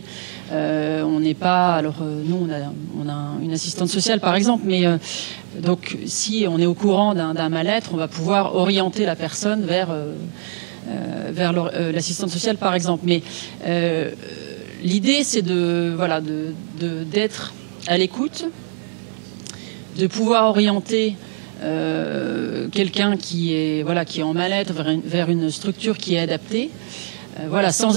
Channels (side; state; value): left; silent; 65 dB below the other